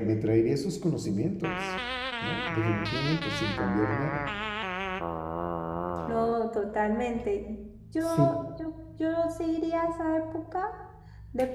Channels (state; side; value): identical; both; correlation 1.00